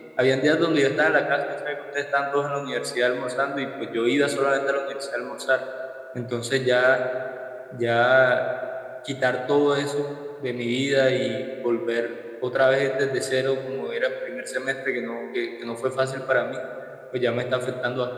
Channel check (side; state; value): both; identical; correlation 1.00